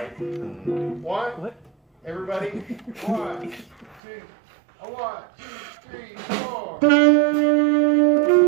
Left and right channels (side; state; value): left; drops out; at 4.0 s